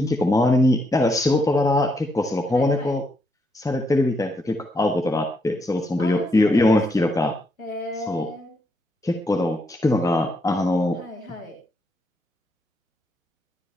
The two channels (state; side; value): normal; both; correlation 0.78